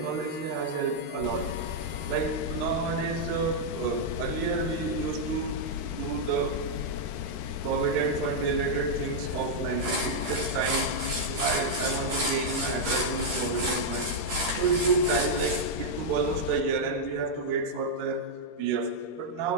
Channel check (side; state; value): left; late; 13 ms